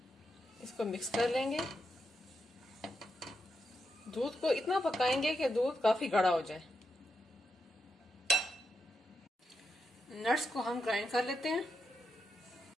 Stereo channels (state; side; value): normal; both; correlation 0.84